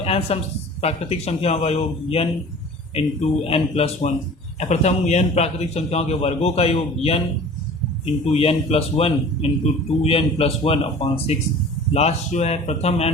n सम प्राकृतिक संख्याओं का योग n इंटू n प्लस 1। प्रथम n प्राकृतिक संख्याओं के वर्गों का योग n into n plus 1 into 2n plus 1/6। Last जो है प्रथम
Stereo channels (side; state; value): both; normal; correlation 0.43